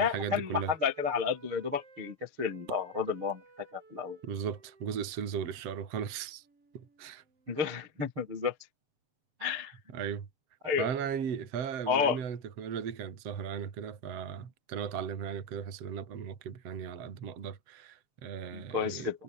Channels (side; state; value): left; late; 7.7 ms